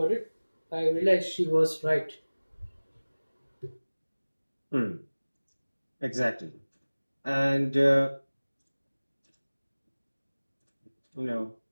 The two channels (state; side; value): inverted; both; correlation -1.00